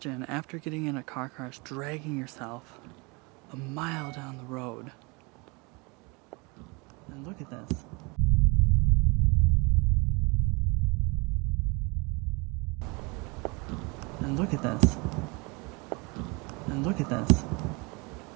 after getting in a car crash dragging yourself a mile down the road And look at this. And look at this. And look at this.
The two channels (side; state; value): left; quieter; 28.3 dB